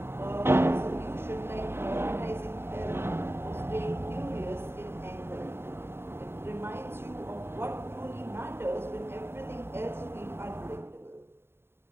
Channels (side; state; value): left; late; 0.11 ms